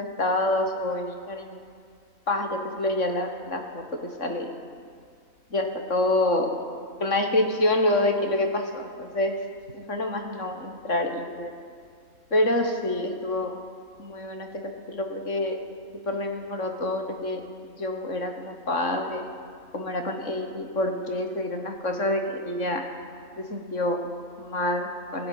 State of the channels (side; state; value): right; late; 3.6 ms